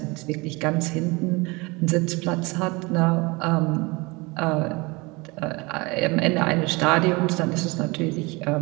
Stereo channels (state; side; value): quieter; left; 25.6 dB